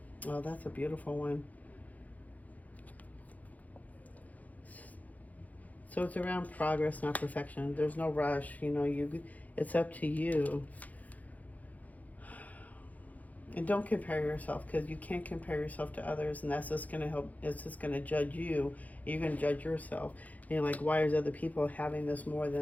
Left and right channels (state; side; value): late; right; 0.077 ms